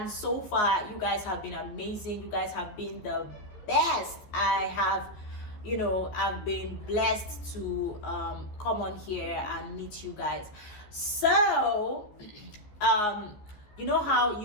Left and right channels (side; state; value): right; late; 14 ms